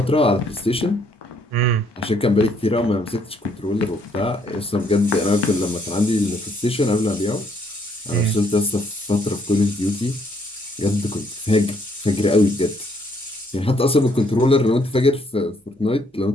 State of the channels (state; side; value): normal; both; correlation 0.68